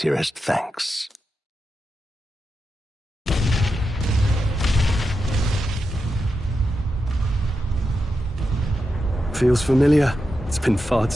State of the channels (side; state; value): both; normal; correlation 0.88